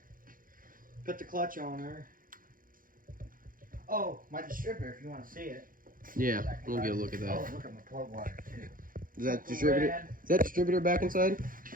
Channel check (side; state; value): left; late; 0.40 ms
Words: put the clutch on her. Oh, my distributor, if you want to see it. Yeah, we'll get a look at that. Oh, look at my plug wire, too. Is that distributor? Is that distributor back inside?